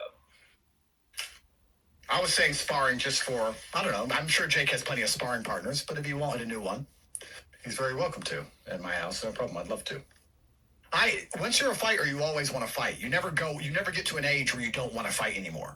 I was saying sparring just for, I don't know. I'm sure Jake has plenty of sparring partners, but if he wanted a new one, he's very welcome to at my house. No problem. I'd love to. Once you're a fighter, you always want to fight. You never get to an age where you don't want to fight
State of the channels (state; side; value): identical; both; correlation 1.00